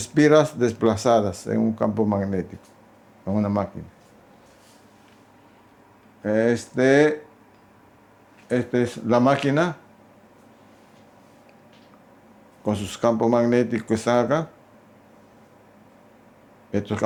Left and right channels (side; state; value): both; identical; correlation 1.00